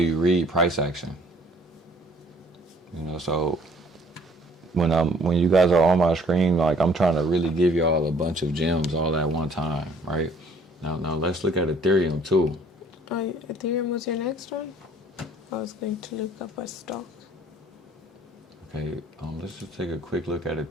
read price action. So when you guys are on my screen, like I'm trying to really give y'all a bunch of gems all at one time, right? Now let's look at Ethereum too. Ethereum was your next one? I was going to look up a stock. Okay, let's just take a quick look at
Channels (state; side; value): normal; both; correlation 0.58